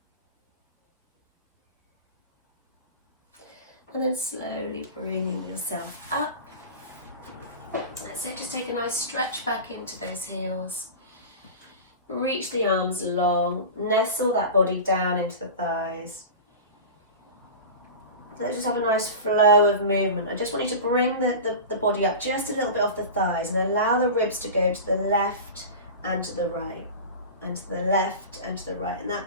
And then slowly bringing yourself up. That's it, just take a nice stretch back into those heels. Reach the arms long, nestle that body down into the thighs. Let's just have a nice flow of movement. I just want you to bring the body up just a little bit off the thighs and allow the ribs to go to the left and to the right, and to the left and to the right. And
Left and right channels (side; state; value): both; inverted; correlation -0.30